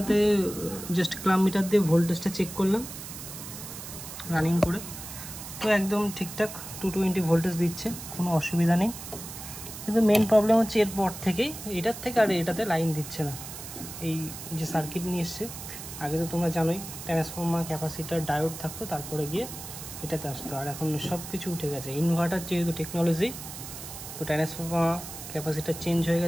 জাস্ট ক্লাম মিটার দিয়ে ভোল্টেজটা চেক করলাম রানিং করে। তো একদম ঠিকঠাক 220 ভোল্টেজ দিচ্ছে, কোনো অসুবিধা নেই। কিন্তু মেন প্রবলেম হচ্ছে এরপর থেকেই, এটার থেকে আর এটাতে লাইন দিচ্ছে না। এই যে সার্কিট নিয়ে এসছে, আগে তো তোমরা জানোই ট্রান্সফর্মার, ক্যাপাসিটার, ডায়োড থাকতো, তারপরে গিয়ে এটাতে আসতো। আর এখন সব কিছু উঠে গেছে, ইনভার্টার যেহেতু টেকনোলজি, তো ট্রান্সফর্মার, ক্যাপাসিটার চেঞ্জ হয়ে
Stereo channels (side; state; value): right; noise; hiss, 11 dB below the sound